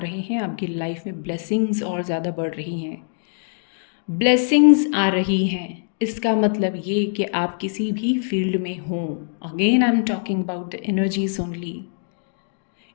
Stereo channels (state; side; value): silent; right; digital silence